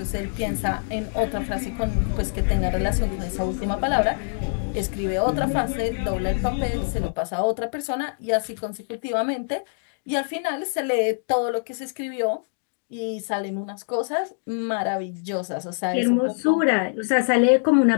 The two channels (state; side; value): silent; right; digital silence